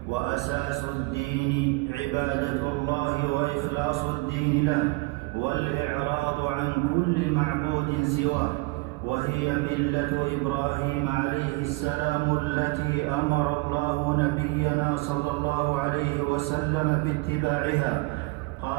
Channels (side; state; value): left; quieter; 24.6 dB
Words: وأساس الدين عبادة الله وإخلاص الدين له، والإعراض عن كل معبود سواه، وهي ملة إبراهيم عليه السلام التي أمر الله نبينا صلى الله عليه وسلم باتباعها.